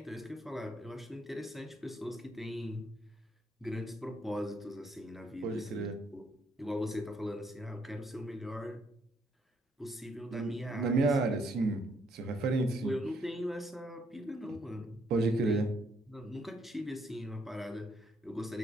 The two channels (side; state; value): both; normal; correlation 0.71